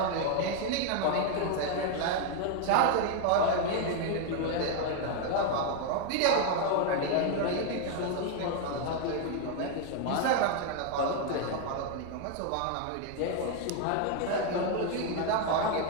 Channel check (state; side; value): different; both; correlation 0.01